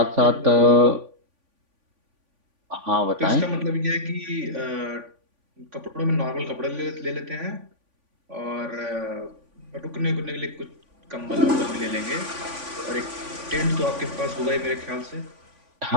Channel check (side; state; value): left; late; 3.5 ms